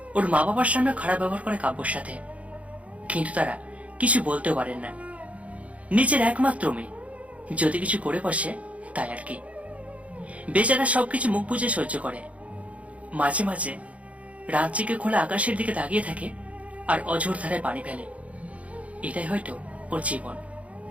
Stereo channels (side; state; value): left; late; 0.065 ms